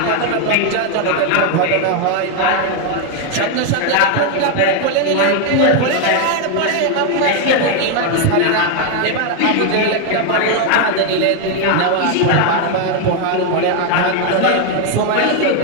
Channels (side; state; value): both; different; correlation 0.01